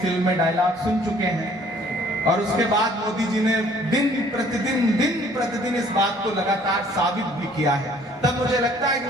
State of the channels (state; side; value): normal; both; correlation 0.57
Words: फिल्म में डायलॉग सुन चुके हैं। और उसके बाद मोदी जी ने दिन प्रतिदिन इस बात को लगातार साबित भी किया है। तब मुझे लगता है कि